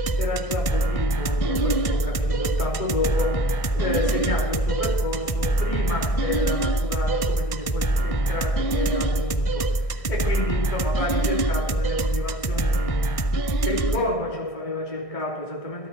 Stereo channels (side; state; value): right; late; 1.6 ms